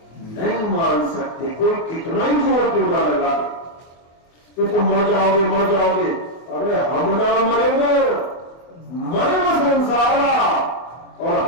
नहीं मान सकते। कोई कितना ही जोर क्यों ना लगा कि तुम मर जाओगे मर जाओगे। अरे हम ना मरेंगे, मरे न संसारा, और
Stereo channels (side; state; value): right; late; 24 ms